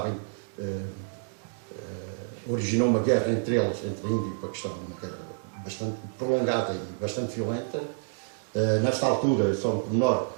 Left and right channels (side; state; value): left; silent; digital silence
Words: originou uma guerra entre eles, entre a Índia e o Paquistão, uma guerra bastante prolongada e bastante violenta. Nesta altura, só um pormenor,